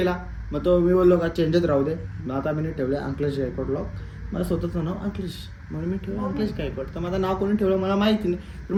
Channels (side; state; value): both; identical; correlation 1.00